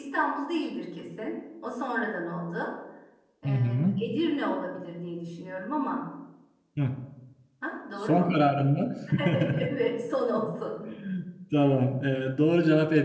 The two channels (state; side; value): identical; both; correlation 1.00